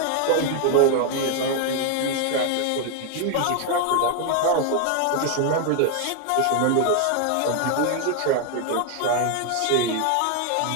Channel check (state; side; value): different; both; correlation 0.00